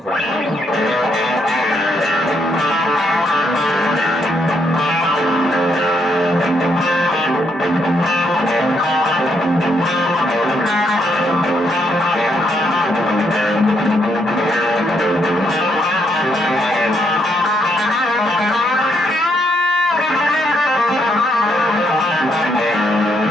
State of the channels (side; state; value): both; normal; correlation 0.75